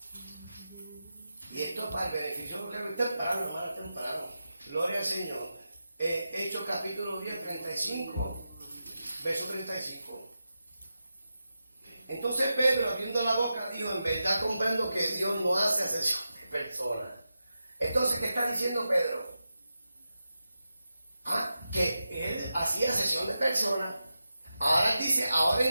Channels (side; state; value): both; inverted; correlation -0.90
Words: Y esto es para el beneficio de los que temprano, hermano, temprano. Gloria al Señor. Hechos capítulo 10, 35, verso 35. Entonces Pedro, abriendo la boca, dijo, en verdad comprendo que Dios no hace acepción de personas. Entonces, ¿qué está diciendo Pedro? Que él hacía acepción de personas. Ahora dice, ahora